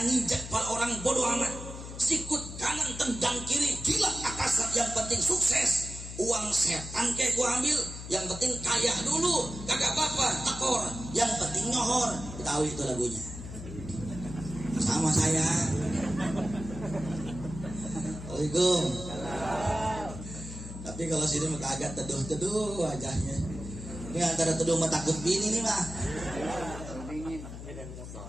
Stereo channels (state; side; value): noise; left; hum, 10 dB below the sound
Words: nginjak kepala orang bodoh amat. Sikut kanan tendang kiri, gila atasan, yang penting sukses. Uang setan kayak gua ambil, yang penting kaya dulu, kagak apa-apa, tekor, yang penting nyohor. Tahu itu lagunya. Sama saya. Assalamualaikum. Tapi kalau sini mah agak teduh-teduh wajahnya. Ini antara teduh sama takut bini nih mah.